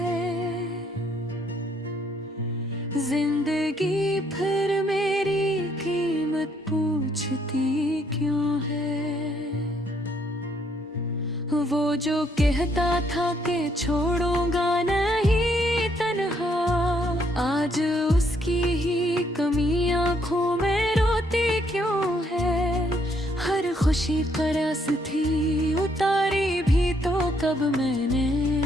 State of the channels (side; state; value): both; normal; correlation 0.70